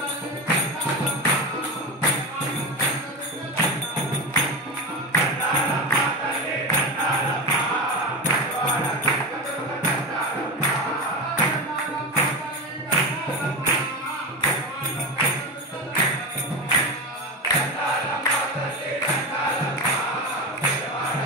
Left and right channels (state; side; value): normal; both; correlation 0.20